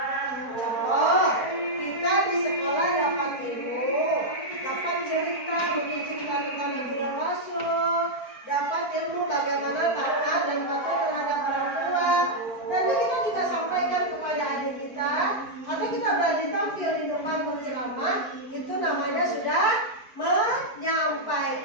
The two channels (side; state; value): right; late; 4.5 ms